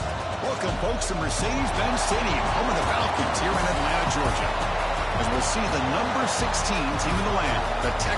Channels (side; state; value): both; identical; correlation 1.00